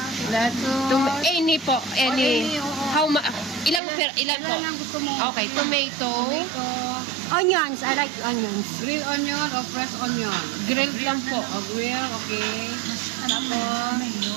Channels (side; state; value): left; drops out; at 3.8 s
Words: Any po. Any. How ma... Ilang po? Ilan ang gusto mo? Okay, tomato. Onions. I like onions. Grilled onion o fresh onion? Grilled lang po. O grill, okay. Tapos,